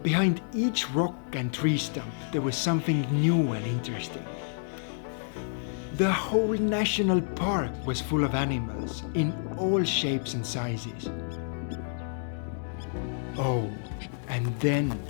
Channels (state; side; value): silent; right; digital silence